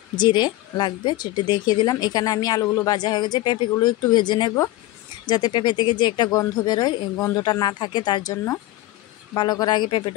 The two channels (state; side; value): quieter; right; 16.5 dB